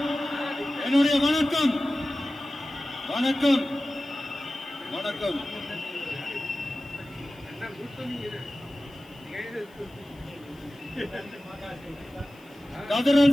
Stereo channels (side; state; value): left; noise; hiss, 29 dB below the sound